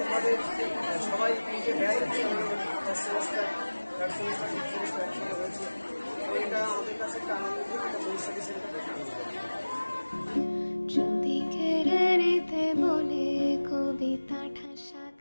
সবাই নিজে ব্যয় first semester third semester fifth semester একসঙ্গে হয়েছে। তো এটা আমাদের কাছে একটা আনন্দ, এটা পরিস্থিতি সেটা একটা আনন্দ।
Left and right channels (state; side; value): inverted; both; correlation -1.00